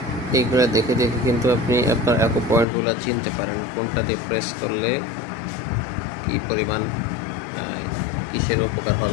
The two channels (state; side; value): drops out; right; at 2.7 s